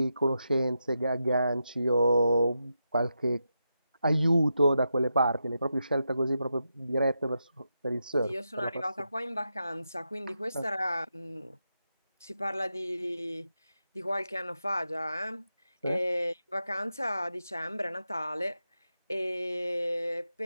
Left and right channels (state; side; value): inverted; both; correlation -0.87